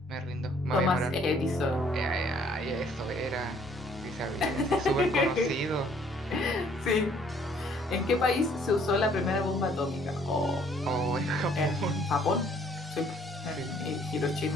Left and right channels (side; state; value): both; normal; correlation 0.61